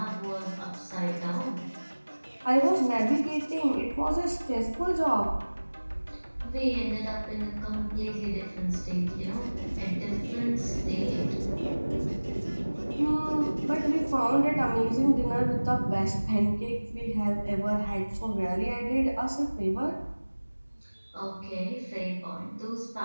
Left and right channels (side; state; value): both; inverted; correlation -1.00